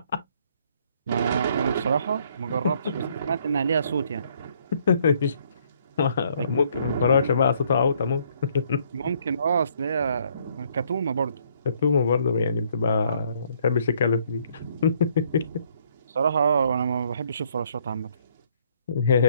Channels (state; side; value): inverted; both; correlation -0.66